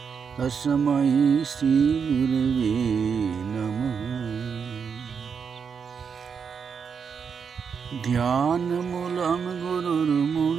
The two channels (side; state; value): left; quieter; 6.4 dB